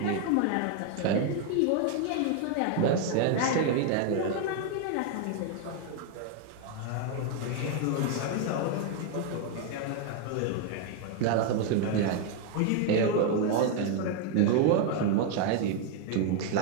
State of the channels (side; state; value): both; different; correlation 0.01